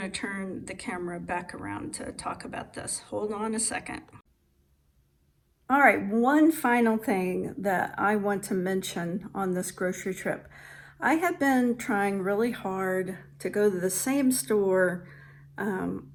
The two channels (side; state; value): both; identical; correlation 1.00